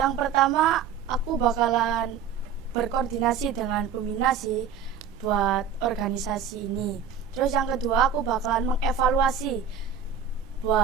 pertama, aku bakalan berkoordinasi dengan pembina sih buat organisasi ini. Terus yang kedua, aku bakalan mengevaluasi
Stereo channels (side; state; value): left; quieter; 7.2 dB